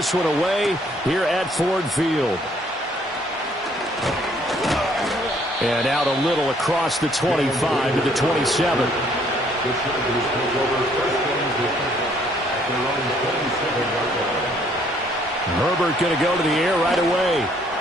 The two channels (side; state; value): both; normal; correlation 0.64